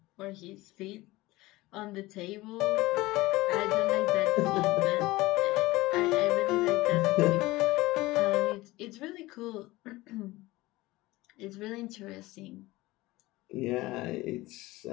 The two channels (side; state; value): right; quieter; 19.5 dB